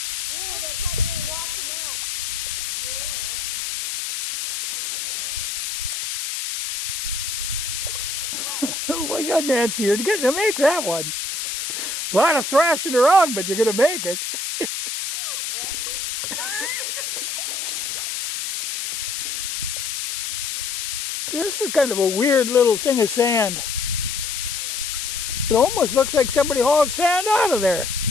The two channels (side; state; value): left; noise; hiss, 3 dB below the sound